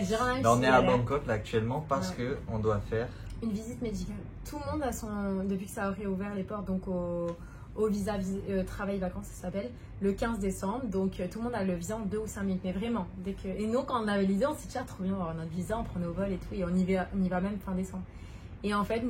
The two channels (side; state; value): both; identical; correlation 1.00